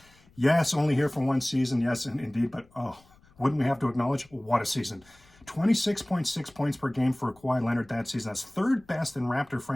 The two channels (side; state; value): left; noise; rumble, 29 dB below the sound